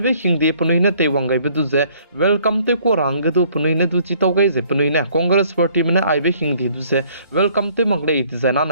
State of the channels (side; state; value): both; inverted; correlation -0.60